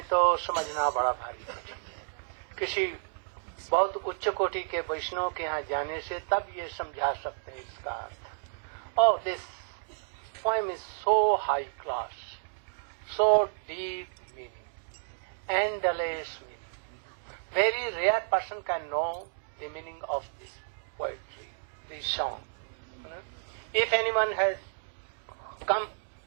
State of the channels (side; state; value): left; silent; digital silence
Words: तो समझना बड़ा भारी है। किसी बहुत उच्च कोटि के वैष्णव के यहाँ जाने से तब ये समझा सकते हैं इसका अर्थ। Oh, this poem is so high class, so deep meaning, endless meaning. Very rare person can know the meaning of this poetry, this song. If anyone has come